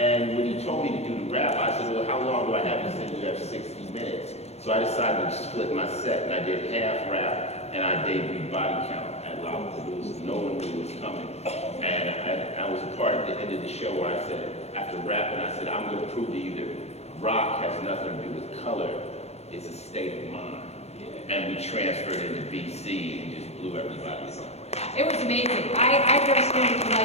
when he told me to do the rap, I said, well, how long do I have? He said, you have 60 minutes. So I decided to split my set, and I did half rap, and I debuted Body Count at Lollapalooza. No one knew it was coming. And I was a part at the end of the show where I said, after rapping, I said, I'm going to prove to you that rock has nothing to do with color. It's a state of mind. And we transferred into BC and just blew everybody away. It was amazing. I've never seen anything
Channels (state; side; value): late; right; 0.31 ms